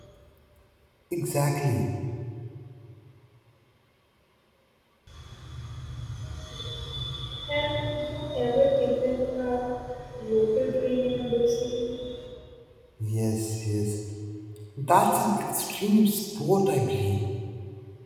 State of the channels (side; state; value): both; identical; correlation 1.00